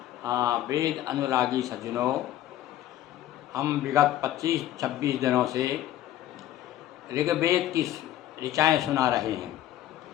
हाँ, वेद अनुरागी सज्जनों, हम विगत 25-26 दिनों से ऋग्वेद की ऋचाएँ सुना रहे हैं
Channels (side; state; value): right; quieter; 13.0 dB